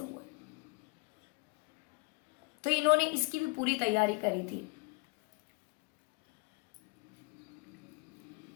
हुआ है। तो इन्होंने इसकी भी पूरी तैयारी करी थी।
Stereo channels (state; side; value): quieter; right; 28.3 dB